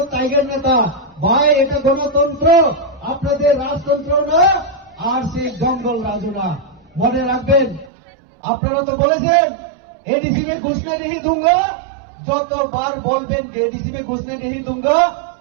টাইগার নেতা ভাই এটা গণতন্ত্র আপনাদের রাজতন্ত্র না আর সেই জঙ্গল রাজু না মনে রাখবেন আপনারা তো বলেছেন एडीसी में घुसने नहीं दूंगा যতবার বলবেন যে এডিসি में घुसने नहीं दूंगा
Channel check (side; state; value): left; drops out; at 7.9 s